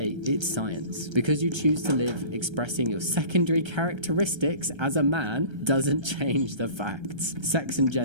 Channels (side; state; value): left; late; 1.3 ms